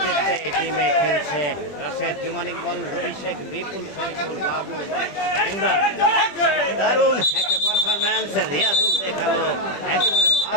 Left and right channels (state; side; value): late; right; 21 ms